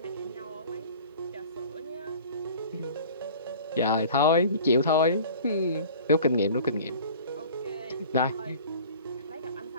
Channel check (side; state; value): both; inverted; correlation -0.44